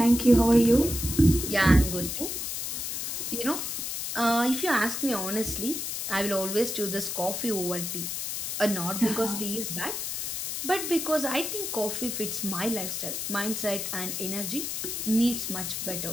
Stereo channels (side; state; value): left; noise; hiss, 3 dB below the sound